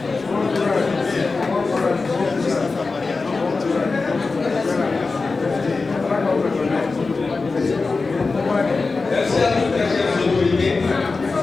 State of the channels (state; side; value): quieter; right; 4.0 dB